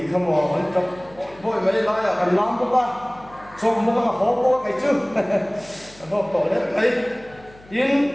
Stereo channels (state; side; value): noise; left; hum, 24 dB below the sound